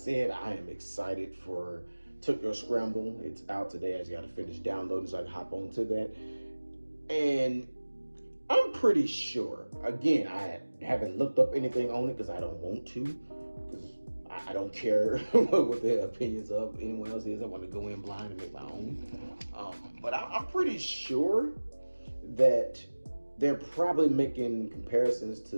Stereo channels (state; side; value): inverted; both; correlation -1.00